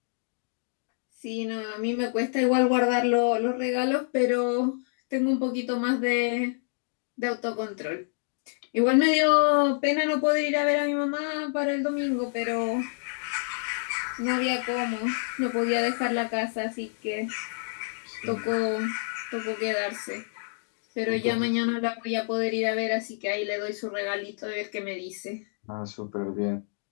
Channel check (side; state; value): right; silent; digital silence